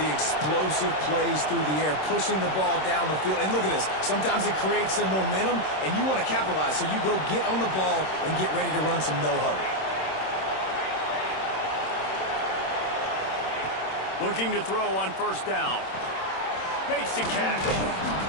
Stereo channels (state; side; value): late; right; 26 ms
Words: explosive plays through the air, pushing the ball down the field. And look at this. Sometimes it creates some momentum, and you want to capitalize. So you go get on the ball and get ready to run some no-huddle. Looking to throw on first down. Makes the catch.